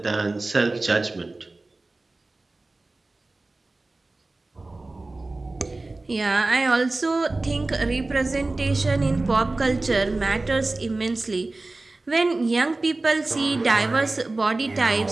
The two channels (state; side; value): quieter; left; 3.1 dB